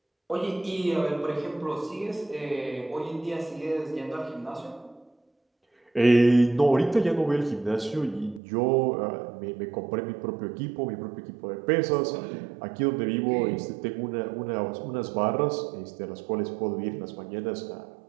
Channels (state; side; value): drops out; left; at 8.4 s